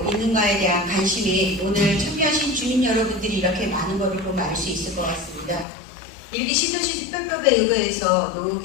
있는가에 대한 관심이 오늘 참여하신 주민 여러분들이 이렇게 많은 것을 보면 알 수 있을 것 같습니다. 일기 신도시 특별법에 의거해서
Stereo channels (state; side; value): drops out; right; at 5.7 s